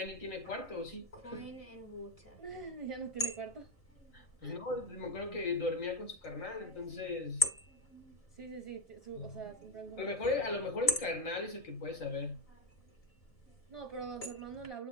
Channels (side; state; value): right; late; 1.7 ms